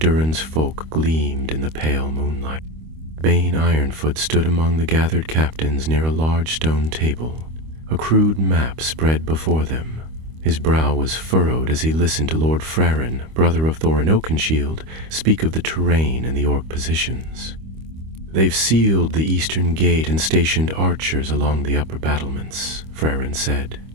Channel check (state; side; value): late; left; 25 ms